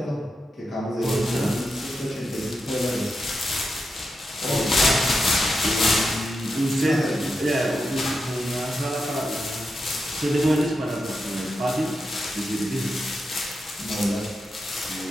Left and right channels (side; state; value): both; normal; correlation 0.87